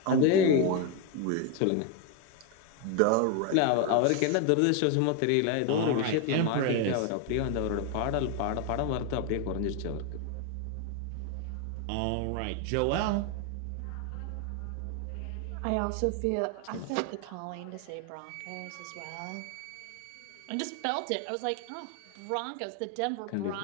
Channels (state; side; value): different; both; correlation 0.01